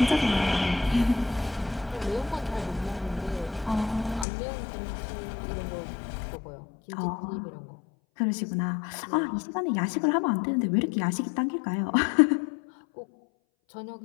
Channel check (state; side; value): drops out; right; at 4.2 s